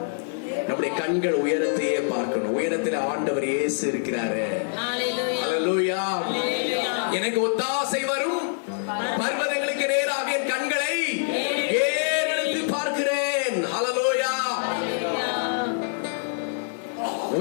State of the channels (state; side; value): silent; right; digital silence